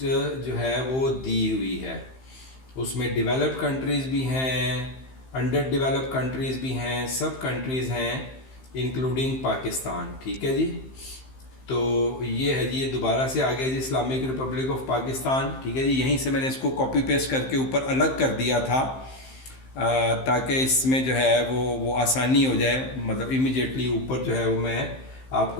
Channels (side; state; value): right; late; 15 ms